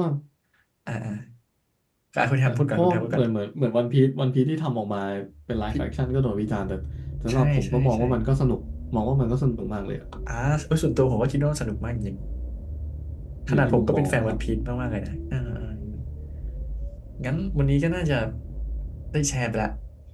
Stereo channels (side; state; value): both; identical; correlation 1.00